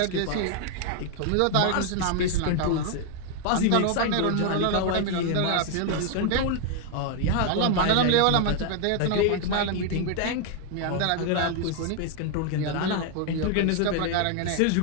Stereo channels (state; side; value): different; both; correlation 0.01